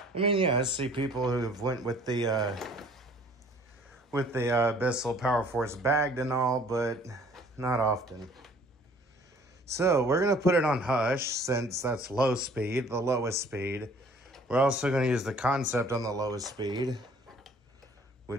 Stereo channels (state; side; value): normal; both; correlation 0.55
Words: I mean, yeah, I see people who have went with the Bissell Power Force bagged and all, but not often. So we're going to put it on hush since that's low speed, the lowest speed. We're also going to use the Concept on the lowest speed,